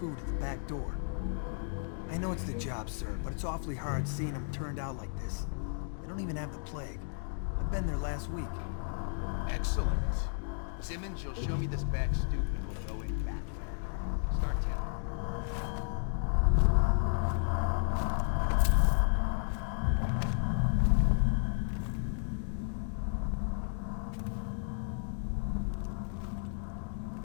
at the back door. I know it's the job, sir, but it's awfully hard seeing them turned out like this. They don't even have the plague. I've been there last week. Excellent. Simmons, you'll show me this back stoop and we'll go in back there. Start telling.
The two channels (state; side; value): silent; right; digital silence